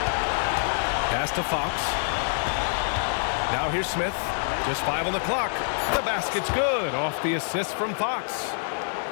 Pass to Fox. Now here's Smith. Just 5 on the clock. The basket's good off the assist from Fox.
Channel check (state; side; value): silent; right; digital silence